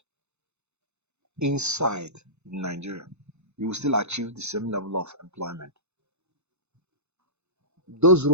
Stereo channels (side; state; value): left; late; 0.81 ms